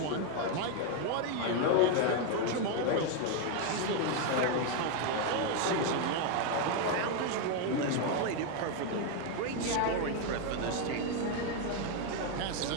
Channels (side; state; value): both; different; correlation 0.01